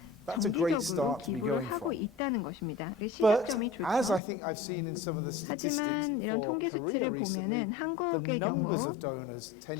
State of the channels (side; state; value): right; drops out; at 4.2 s